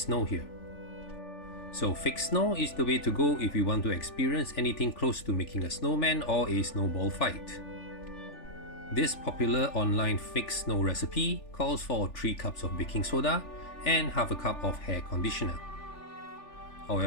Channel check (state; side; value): late; right; 3.4 ms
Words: here. So fake snow is the way to go if you want to experience anything close to making a snowman or a snowball fight. This popular online fake snow recipe calls for 3 cups of baking soda and half a cup of hair conditioner.